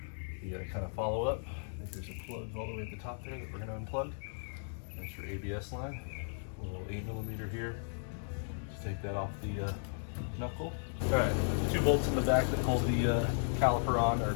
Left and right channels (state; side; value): silent; right; digital silence